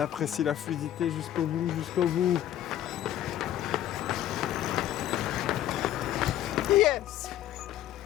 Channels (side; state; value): right; quieter; 12.2 dB